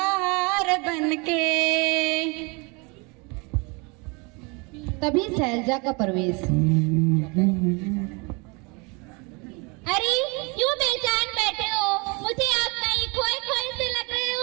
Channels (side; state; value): left; quieter; 29.8 dB